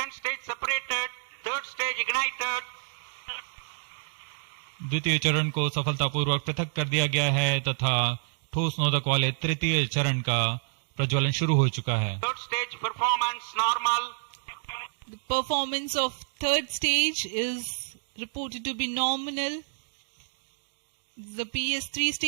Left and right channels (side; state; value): left; silent; digital silence